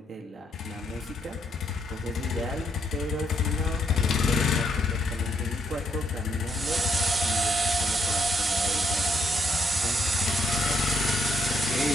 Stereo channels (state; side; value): normal; both; correlation 0.74